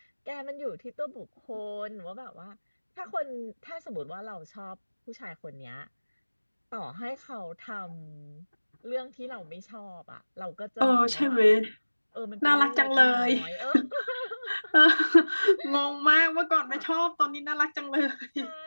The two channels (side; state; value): both; inverted; correlation -1.00